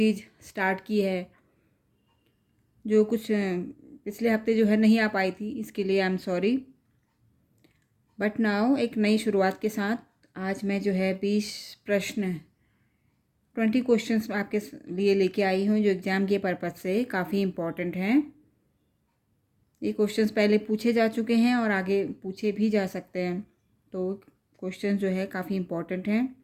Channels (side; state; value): both; identical; correlation 1.00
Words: स्टार्ट की है, जो कुछ पिछले हफ्ते जो है नहीं आ पाई थी। इसके लिए I am sorry, but now एक नई शुरुआत के साथ आज मैं जो है 20 प्रश्न 20 क्वेश्चंस आपके लिए लेके आई हूँ, जो एग्ज़ाम के पर्पज़ से काफ़ी इम्पॉर्टेंट हैं। ये क्वेश्चंस पहले पूछे जा चुके हैं और आगे पूछे भी जा सकते हैं, तो क्वेश्चन जो है काफ़ी इम्पॉर्टेंट हैं।